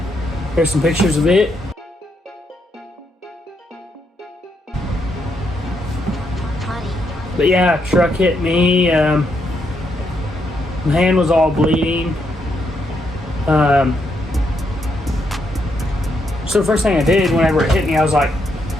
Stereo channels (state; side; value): normal; both; correlation 0.78